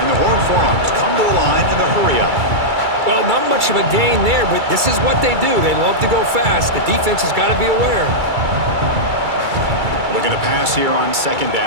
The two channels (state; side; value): late; left; 2.3 ms